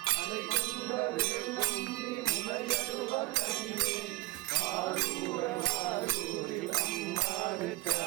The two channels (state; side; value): quieter; left; 19.5 dB